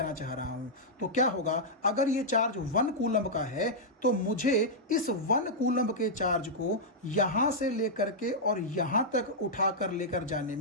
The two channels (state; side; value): normal; both; correlation -0.07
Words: चाह रहा हूं, तो क्या होगा, अगर ये चार्ज 1 कूलम का है तो मुझे इस 1 कूलम के चार्ज को यहां से लेकर के और यहां तक उठाकर लेकर जाने